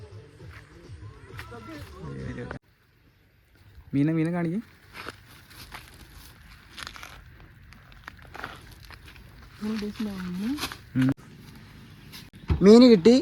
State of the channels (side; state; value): both; identical; correlation 1.00